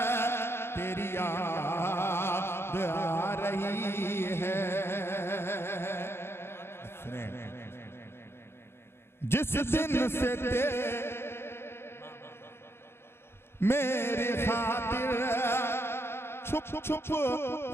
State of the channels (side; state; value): right; late; 0.12 ms